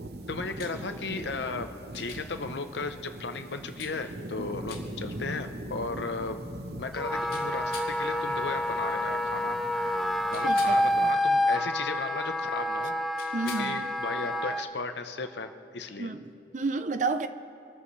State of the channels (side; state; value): both; normal; correlation 0.65